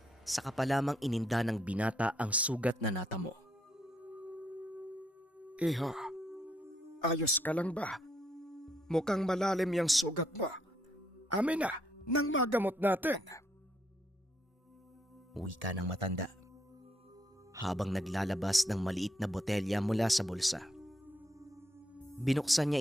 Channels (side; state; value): both; normal; correlation 0.74